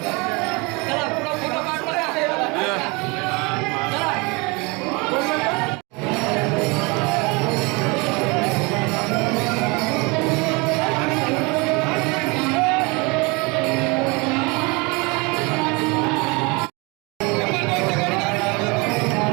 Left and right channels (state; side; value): quieter; left; 27.8 dB